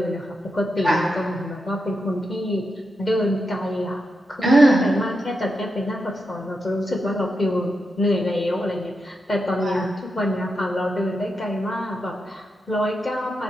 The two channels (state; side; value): normal; both; correlation 0.86